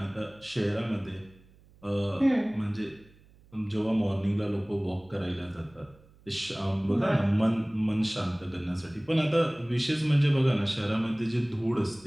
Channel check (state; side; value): noise; right; hum, 27 dB below the sound